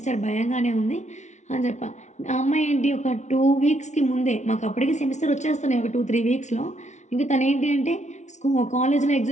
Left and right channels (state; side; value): late; right; 0.33 ms